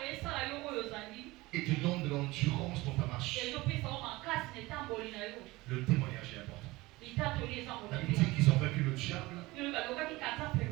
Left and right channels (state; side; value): quieter; left; 20.7 dB